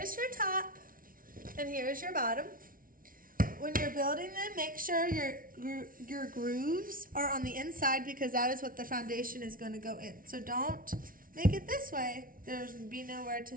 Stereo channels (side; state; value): left; late; 0.41 ms